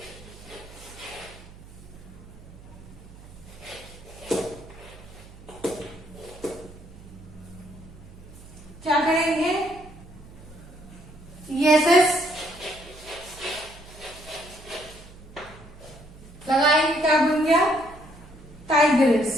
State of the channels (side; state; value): right; noise; hum, 19 dB below the sound